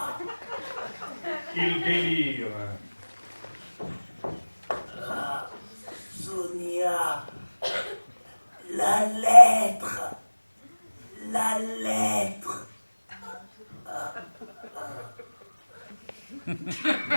Il délire. Sonia. La lettre. La lettre.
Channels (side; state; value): both; inverted; correlation -1.00